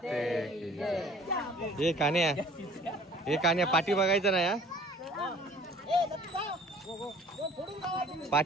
हे कान्या पाठी बघायचं ना या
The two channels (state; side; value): normal; both; correlation 0.51